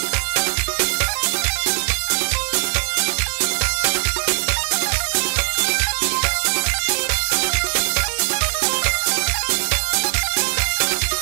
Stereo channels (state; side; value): silent; left; digital silence